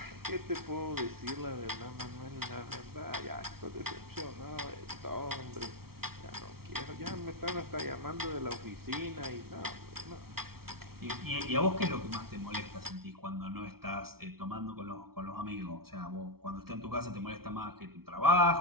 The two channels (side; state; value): left; late; 0.94 ms